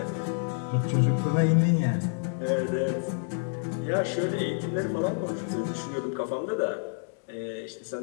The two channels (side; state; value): right; silent; 59 dB below the other